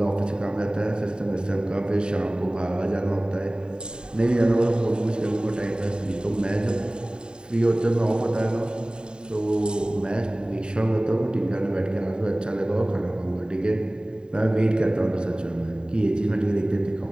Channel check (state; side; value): late; left; 0.048 ms